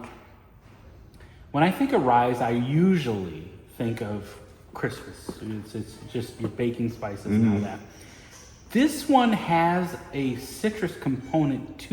When I think of ryes, I usually think of Christmas. It's just your baking spices and all that. This one has a citrus component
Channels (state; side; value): identical; both; correlation 1.00